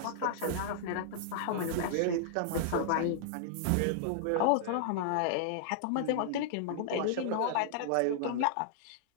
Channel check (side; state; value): both; different; correlation -0.01